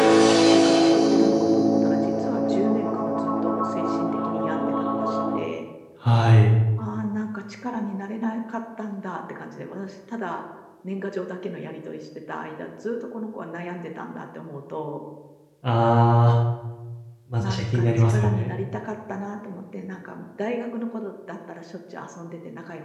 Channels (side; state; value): both; identical; correlation 1.00